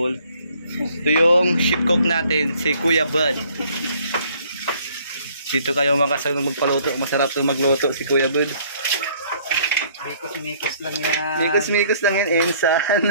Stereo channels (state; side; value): inverted; both; correlation -0.60